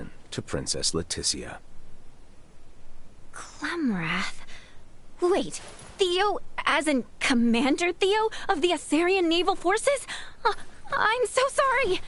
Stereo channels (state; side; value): identical; both; correlation 1.00